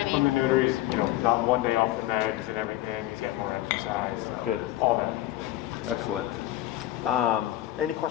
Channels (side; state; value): right; quieter; 15.2 dB